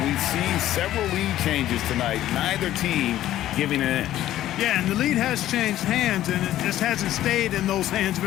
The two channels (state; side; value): quieter; right; 13.3 dB